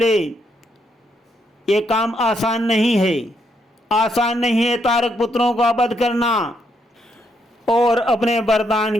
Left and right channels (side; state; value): both; normal; correlation 0.76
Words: ये काम आसान नहीं है, आसान नहीं है तारक पुत्रों का वध करना, और अपने